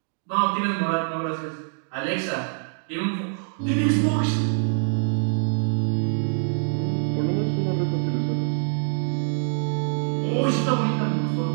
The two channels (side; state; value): left; silent; 62 dB below the other